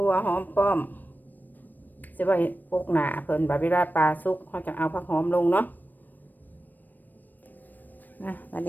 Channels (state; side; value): late; right; 0.089 ms